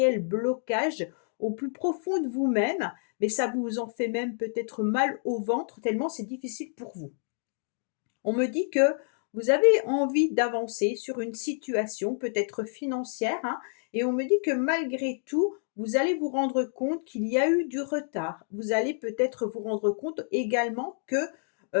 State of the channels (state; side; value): silent; right; digital silence